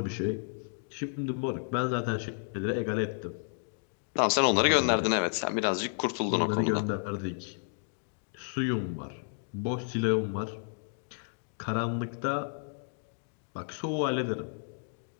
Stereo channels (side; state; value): right; silent; digital silence